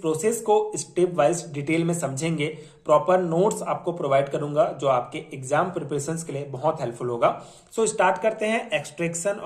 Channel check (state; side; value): identical; both; correlation 1.00